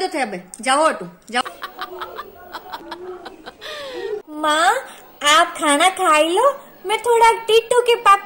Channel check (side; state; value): both; identical; correlation 1.00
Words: थे, अब जाओ तू जाओ। माँ आप खाना खाई लो, मैं थोड़ा टीटू के